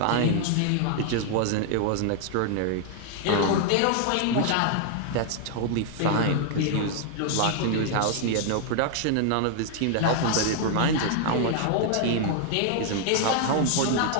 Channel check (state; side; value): different; both; correlation 0.00